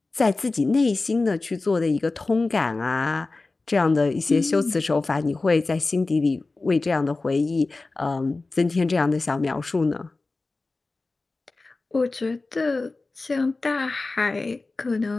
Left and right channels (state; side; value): quieter; right; 3.5 dB